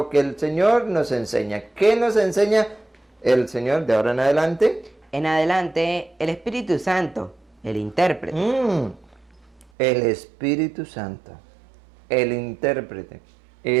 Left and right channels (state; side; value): drops out; left; at 9.7 s